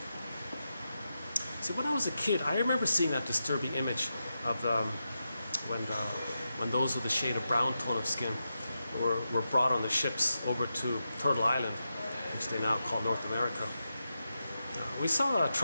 see, when I was a kid, I remember seeing that disturbing image of when those with a shade of brown tone of skin were brought on the ships over to Turtle Island, which they now call North America. We saw a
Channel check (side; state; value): both; inverted; correlation -0.88